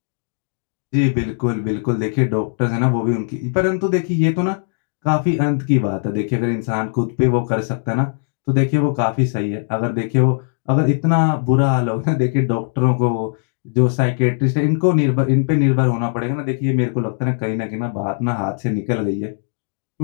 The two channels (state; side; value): silent; right; digital silence